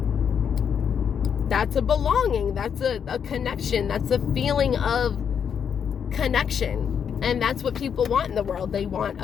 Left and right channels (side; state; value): right; quieter; 7.6 dB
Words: That's a belonging. That's a connection. That's a feeling of connection. And that's what people want in the world. They want